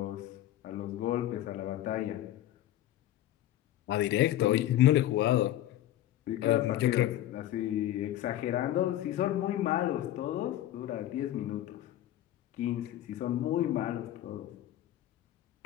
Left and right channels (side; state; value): right; quieter; 13.3 dB